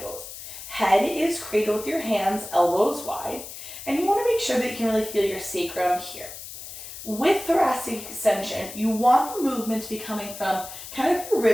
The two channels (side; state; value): left; noise; hiss, 12 dB below the sound